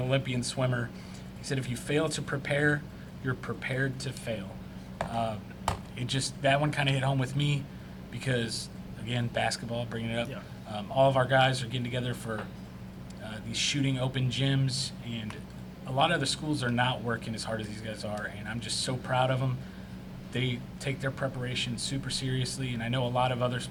swimmer. He said, if you fail to prepare, you're prepared to fail. That one kind of hit home with me because, again, basketball, bringing it up. Yeah. All of our guys are getting together for these shooting open gyms, and a lot of other schools are not working as hard as these guys are, and I'm just so proud of them. They take their preparation super seriously, and I know a lot of other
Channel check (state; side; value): identical; both; correlation 1.00